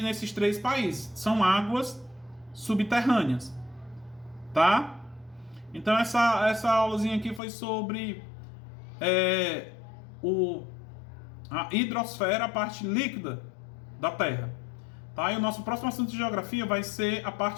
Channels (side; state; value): right; drops out; at 7.4 s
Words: nesses três países. São águas subterrâneas, tá? Então essa aulazinha aqui foi sobre a hidrosfera, a parte líquida da Terra, tá? E o nosso próximo assunto de geografia vai ser a